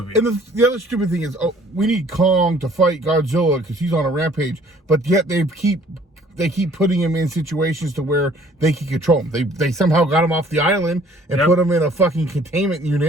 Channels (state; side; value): normal; both; correlation 0.56